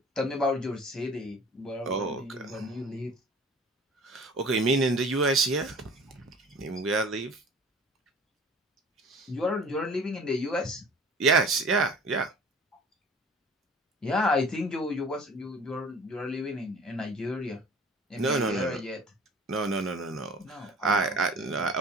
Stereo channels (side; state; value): both; normal; correlation 0.45